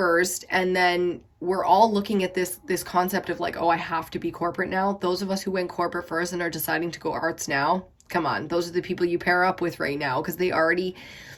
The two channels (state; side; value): identical; both; correlation 1.00